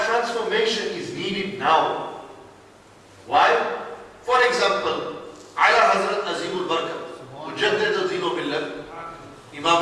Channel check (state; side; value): identical; both; correlation 1.00